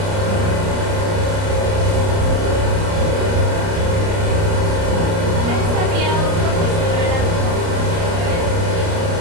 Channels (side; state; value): left; late; 30 ms